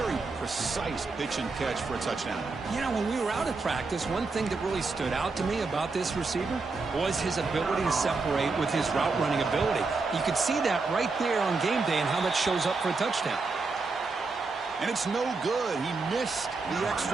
precise pitch and catch for a touchdown. Yeah, when we were out at practice, one thing that really stood out to me about this receiver was his ability to separate with his route running ability. You could see that right there on game day and how that shows up for a touchdown. And it's no good. He missed the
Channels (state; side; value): quieter; left; 4.0 dB